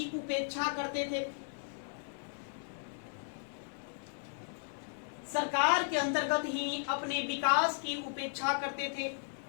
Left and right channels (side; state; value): right; silent; digital silence